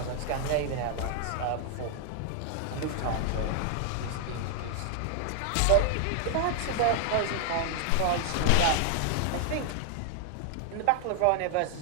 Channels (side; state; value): both; different; correlation 0.00